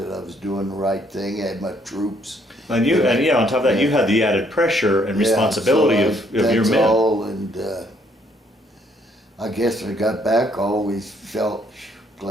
I was doing the right thing. I had my troops. And on top of that, you had the added pressure and responsibility of your men. That's all, and I guess when I got back, I always felt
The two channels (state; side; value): normal; both; correlation 0.67